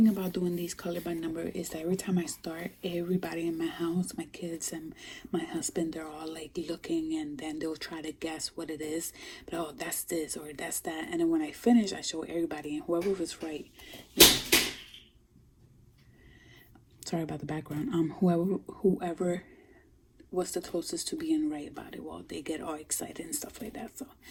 about doing these color by number is that every time I start, everybody in my house, my kids and my husband, they're all like looking, and then they'll try to guess what it is. But oh, that's this or that's that. And then when I finish, I show everybody, and whoever was right, you know, sorry about the background. Whoever was the closest to being right about it, well, they get all excited and stuff like that. So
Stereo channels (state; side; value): identical; both; correlation 1.00